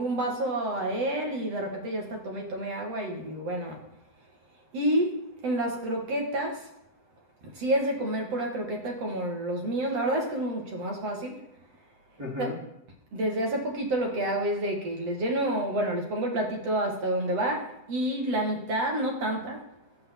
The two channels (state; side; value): late; left; 7.9 ms